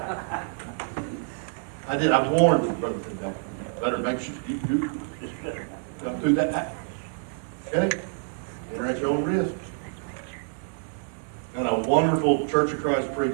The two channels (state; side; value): silent; left; 60 dB below the other